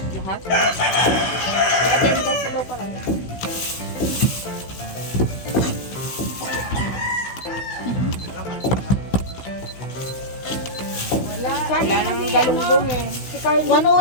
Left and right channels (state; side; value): late; right; 16 ms